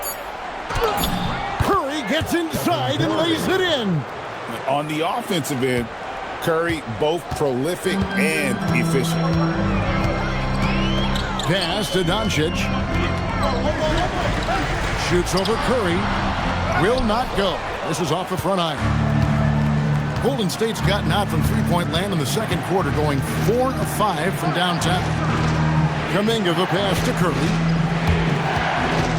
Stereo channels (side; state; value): both; identical; correlation 1.00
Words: Curry gets inside and lays it in. On the offensive end, Curry both prolific and efficient. Pass to Doncic. Shoots over Curry. Will not go. This is off the front iron. Golden State's gotten out from three-point land in the second quarter, going 4 of 5 from downtown. Kuminga the pass to Curry.